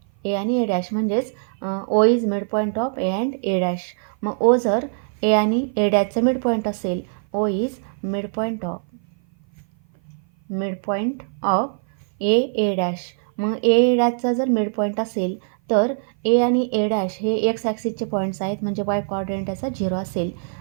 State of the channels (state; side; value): silent; left; 56 dB below the other